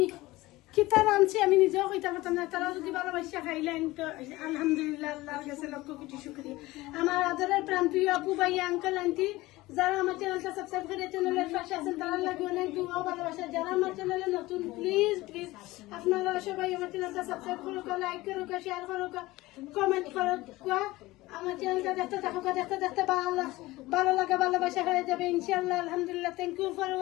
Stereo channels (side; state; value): right; quieter; 19.2 dB